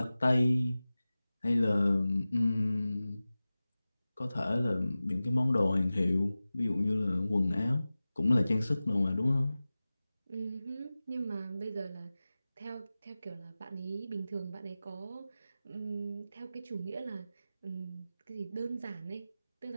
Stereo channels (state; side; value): inverted; both; correlation -0.96